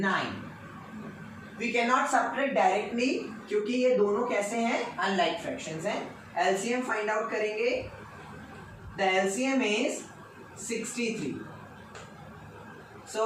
We cannot subtract directly क्योंकि ये दोनों कैसे हैं, unlike fractions हैं. LCM find out करेंगे. The LCM is 63.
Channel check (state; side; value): identical; both; correlation 1.00